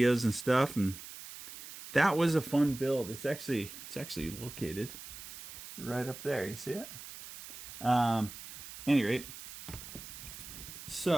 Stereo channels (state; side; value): noise; right; hiss, 13 dB below the sound